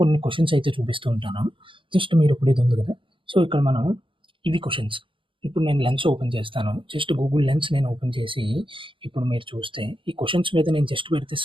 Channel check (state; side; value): late; left; 0.25 ms